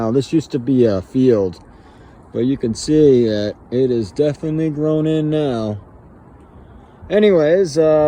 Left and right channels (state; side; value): identical; both; correlation 1.00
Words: this used to be a field, but you can see that it is definitely grown in now. Anyways,